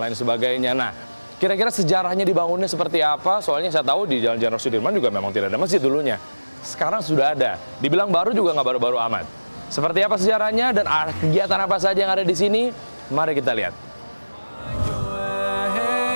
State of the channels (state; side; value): inverted; both; correlation -1.00